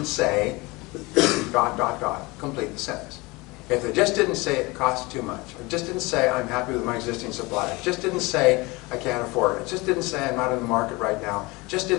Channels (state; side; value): quieter; right; 23.9 dB